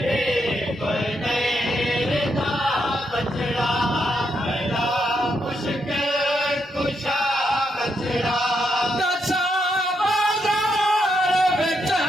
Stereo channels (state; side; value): normal; both; correlation 0.79